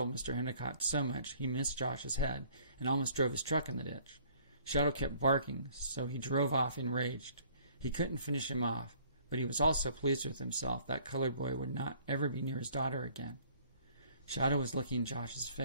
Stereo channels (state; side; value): inverted; both; correlation -0.57